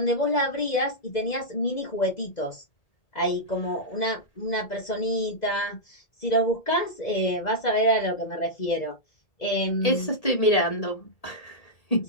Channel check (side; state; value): right; late; 1.8 ms